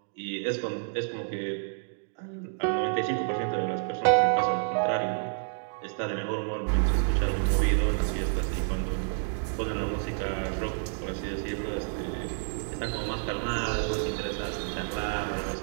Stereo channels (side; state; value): left; silent; digital silence